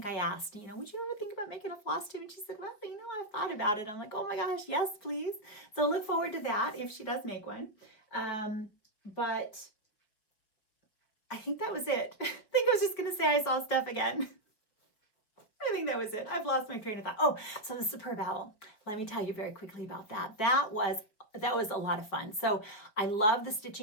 I asked, would you ever think about making a floss tube? And she said, well, I've thought about it. I'm like, oh my gosh, yes, please. So look forward to that if she does make one. But I think that was it. I think I was just going to say I saw Steph again. I think that was it. I've lost my train of thought. Oh, so the Superb Owl. Let me tell you very quickly about that. That was a lot of fun. So I love the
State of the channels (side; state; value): right; late; 4.7 ms